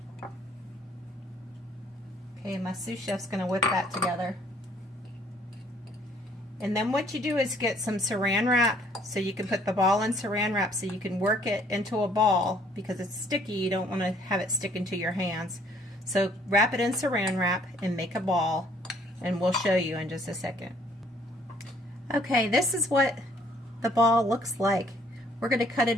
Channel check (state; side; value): normal; both; correlation 0.61